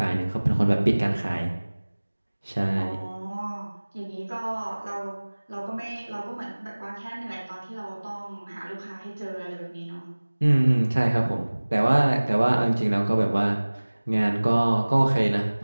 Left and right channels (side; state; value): both; inverted; correlation -1.00